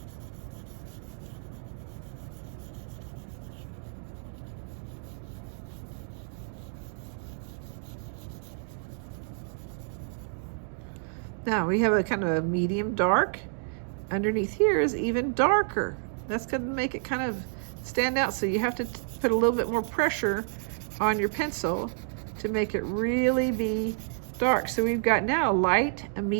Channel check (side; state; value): left; silent; digital silence